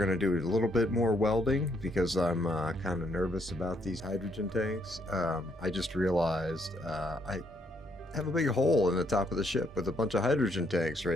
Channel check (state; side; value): normal; both; correlation 0.72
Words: to do a little bit more welding because I'm kind of nervous about these hydrogen tanks. I just realized I have a big hole in the top of the ship with a bunch of hydrogen tanks